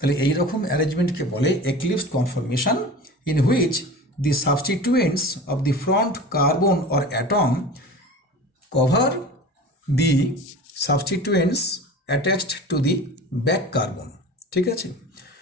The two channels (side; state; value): both; normal; correlation 0.36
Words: এই রকম অ্যারেঞ্জমেন্টকে বলে eclipsed conformation, in which the substituents of the front carbon or atom cover the substituents attached to the back carbon. ঠিক আছে,